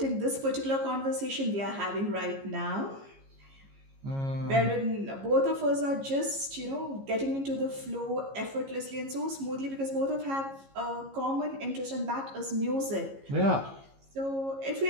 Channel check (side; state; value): left; late; 15 ms